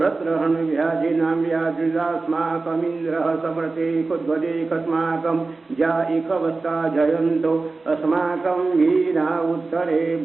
व्याजिनां व्याजुदास्माकमिन्द्रः समर्थे कुद्वदेकस्माकं जाइकवस्ता जयन्तो अस्माकं वीरा उत्तरे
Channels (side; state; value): left; quieter; 3.7 dB